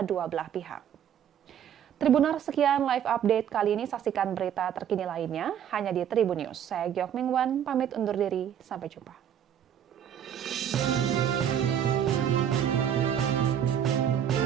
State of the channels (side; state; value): left; quieter; 9.3 dB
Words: belah pihak. Tribuners, sekian live update kali ini. Saksikan berita terkini lainnya hanya di Tribun News. Saya Gyok Mingwan, pamit undur diri. Sampai jumpa.